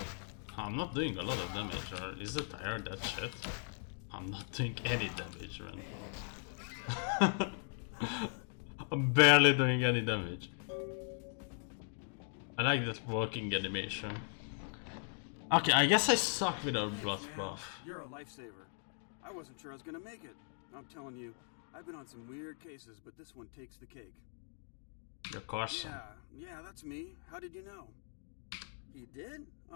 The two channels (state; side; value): silent; right; 52 dB below the other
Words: I'm not doing a lot of damage, or is the tire that shit? I'm not doing any damage, man. I'm barely doing any damage. I like that walking animation. Okay, I guess I suck without blood buff. You're a lifesaver. I wasn't sure I was gonna make it. I'm telling you, I've been on some weird cases, but this one takes the cake. You're Carson. Yeah, that's me. How did you know? He did?